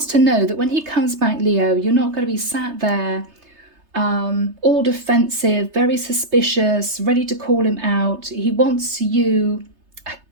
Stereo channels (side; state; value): left; late; 3.3 ms